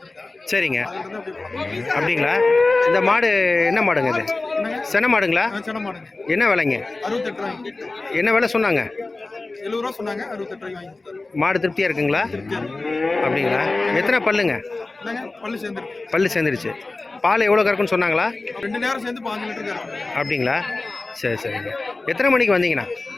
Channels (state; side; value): quieter; right; 3.3 dB